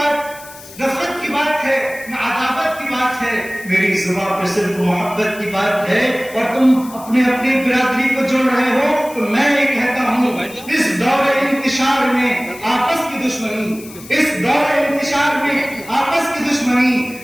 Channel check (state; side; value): noise; left; hiss, 18 dB below the sound